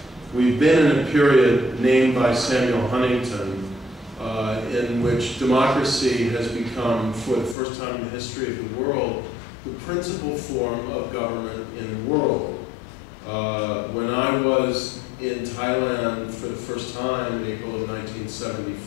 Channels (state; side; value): drops out; right; at 7.6 s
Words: We've been in a period named by Samuel Huntington in which democracy has become, for the first time in the history of the world, the principal form of government in the world. When I was in Thailand for the first time in April of